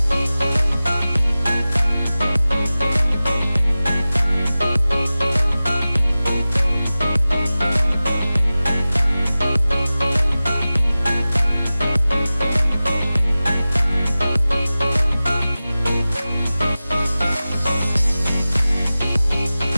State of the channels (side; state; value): both; inverted; correlation -0.96